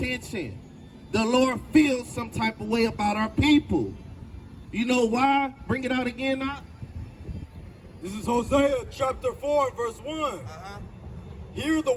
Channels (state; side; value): identical; both; correlation 1.00